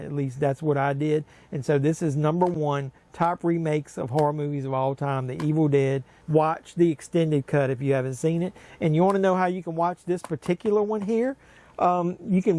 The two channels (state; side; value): identical; both; correlation 1.00